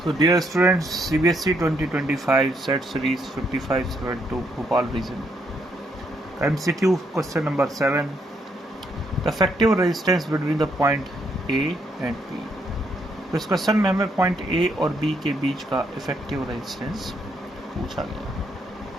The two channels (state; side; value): normal; both; correlation 0.74